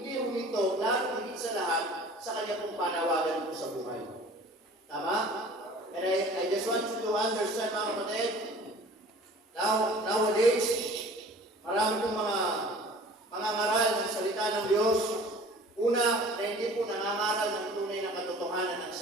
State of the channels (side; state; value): both; normal; correlation 0.46